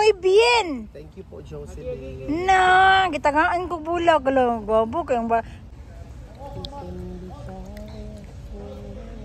bien. Thank you po, Jocelyn. Na, gitagaan ko bulag lang. Gabo kayong ba.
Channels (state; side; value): identical; both; correlation 1.00